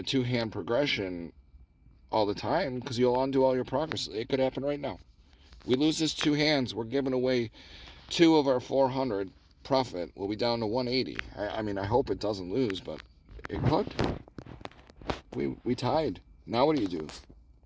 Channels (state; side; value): identical; both; correlation 1.00